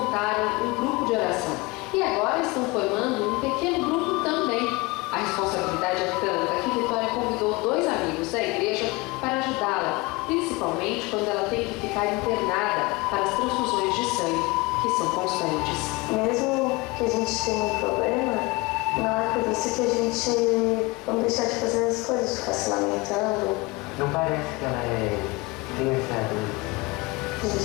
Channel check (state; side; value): quieter; right; 24.3 dB